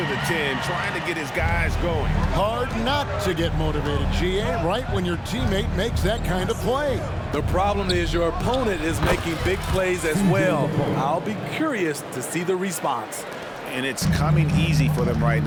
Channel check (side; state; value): both; identical; correlation 1.00